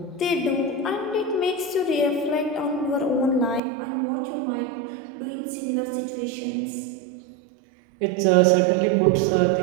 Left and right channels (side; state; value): left; drops out; at 3.6 s